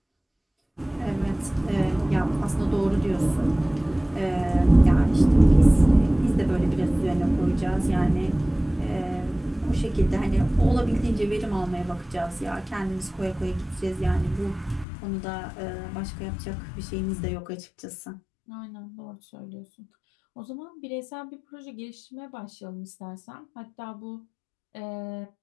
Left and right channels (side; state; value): right; drops out; at 14.9 s